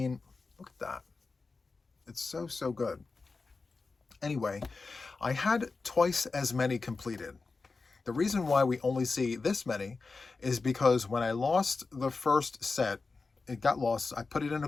look at that. It's so, so good. Anyway, I had twice as many completed. The reason why we only see this many is because when I lost the first set, it got lost. I put it in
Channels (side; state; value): right; quieter; 4.1 dB